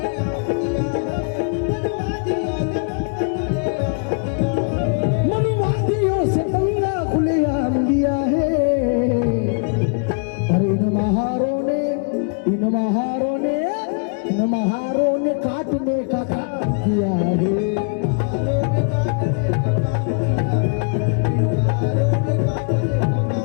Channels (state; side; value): quieter; right; 38.4 dB